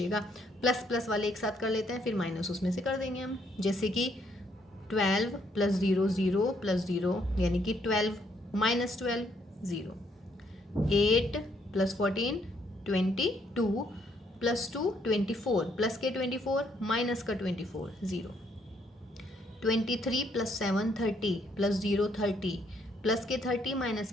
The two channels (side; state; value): both; normal; correlation 0.70